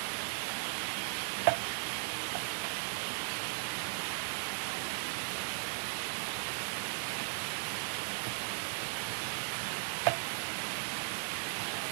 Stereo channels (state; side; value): silent; left; 53 dB below the other